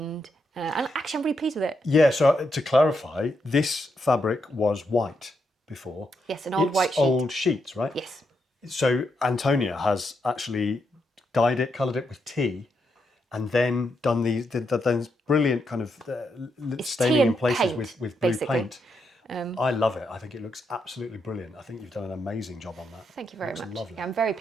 And actually, I'm really pleased with it. Yeah, so to clarify, this fabric was white before. Yes, an old white sheet. Old sheets, right? Yes. So Antonia has actually dyed it, coloured it with tea, and then done these brilliant kind of staining in places paint, with blue basically. paint. I love it. I think it looks absolutely brilliant. I think you've done an amazing job on that. Thank you very much. Lovely. Yeah, I'm very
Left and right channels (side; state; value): both; normal; correlation 0.81